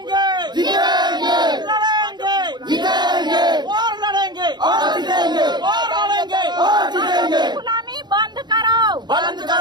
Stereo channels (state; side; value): late; left; 0.21 ms